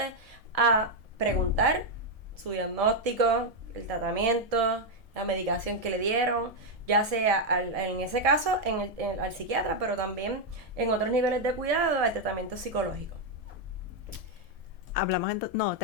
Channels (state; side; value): late; left; 1.7 ms